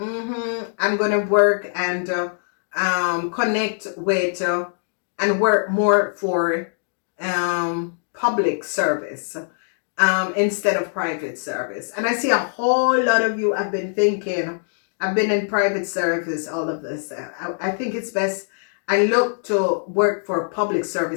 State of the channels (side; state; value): right; silent; digital silence